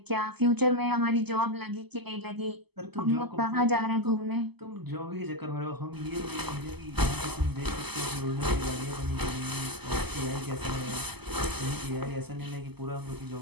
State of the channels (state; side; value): late; left; 0.98 ms